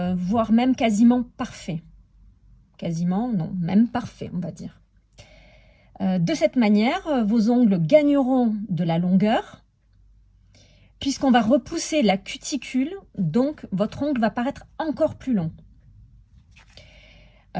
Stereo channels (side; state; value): both; identical; correlation 1.00